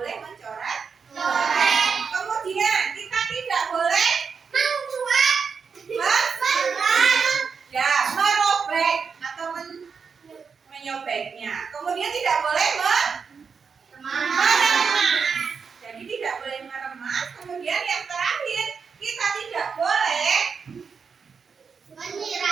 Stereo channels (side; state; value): left; quieter; 5.8 dB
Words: mencoret. Kemudian kita tidak boleh merobek atau menyobeknya. Kemudian tidak boleh meremas. Jadi tidak boleh meremas. Kemudian yang terakhir, kita tidak boleh